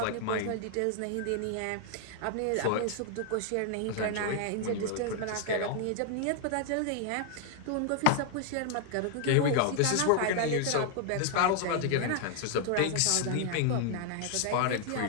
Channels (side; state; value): both; different; correlation 0.00